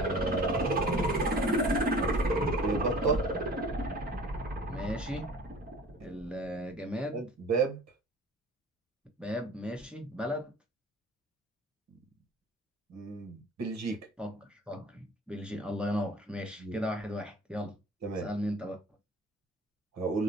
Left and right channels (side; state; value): both; normal; correlation 0.44